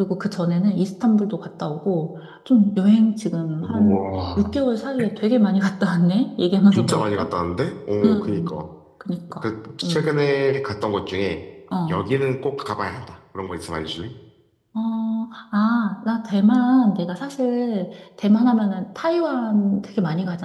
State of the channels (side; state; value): both; identical; correlation 1.00